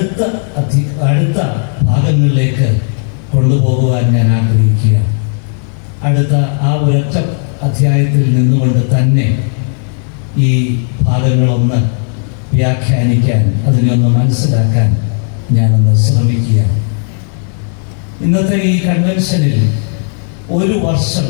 ഭാഗങ്ങളിലേക്ക് കൊണ്ടുപോകുവാൻ ഞാൻ ആഗ്രഹിക്കുക. അടുത്ത ആ ഒരൊറ്റ അധ്യായത്തിൽ നിന്നുകൊണ്ട് തന്നെ ഈ ഭാഗങ്ങളൊന്ന് വ്യാഖ്യാനിക്കാൻ, അതിനൊന്ന് മനസ്സിലാക്കാൻ ഞാനൊന്ന് ശ്രമിക്കുക. ഇന്നത്തെ ഈ കൺവെൻഷനിൽ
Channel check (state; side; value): silent; right; 59 dB below the other